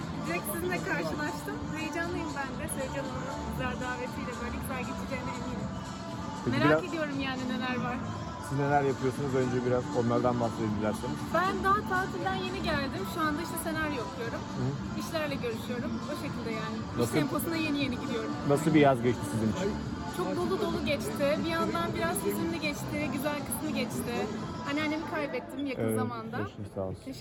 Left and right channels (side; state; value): both; identical; correlation 1.00